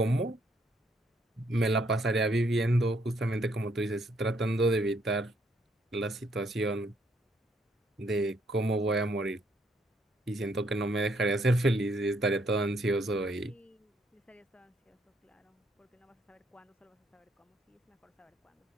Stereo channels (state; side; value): normal; both; correlation 0.71